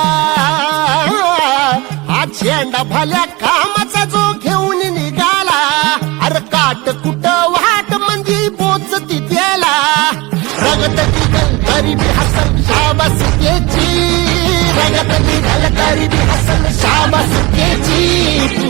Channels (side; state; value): left; quieter; 23.4 dB